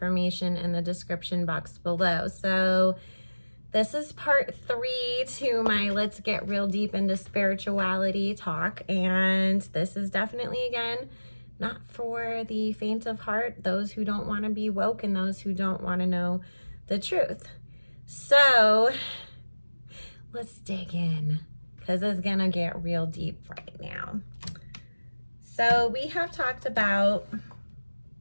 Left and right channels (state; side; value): inverted; both; correlation -1.00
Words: in the description box below. So this is part 3 to my Let's Get Real Deep into Spirituality talk, and this is definitely, again, not for the faint of heart, those who don't want to be woke and those who don't want to know the truth. So let's dig in, because it's gonna get real deep right now. So we have talked about